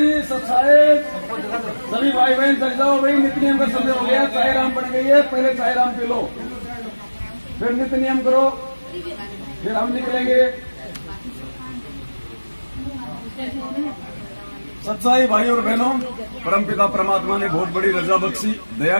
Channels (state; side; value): inverted; both; correlation -1.00